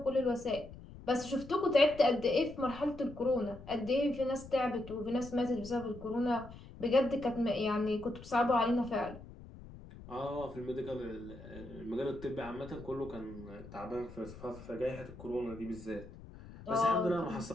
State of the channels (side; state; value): left; noise; rumble, 16 dB below the sound